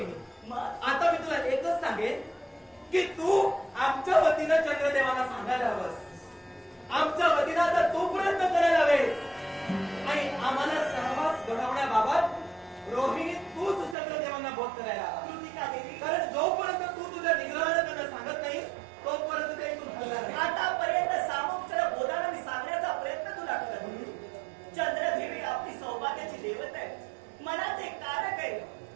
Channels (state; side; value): drops out; left; at 14.0 s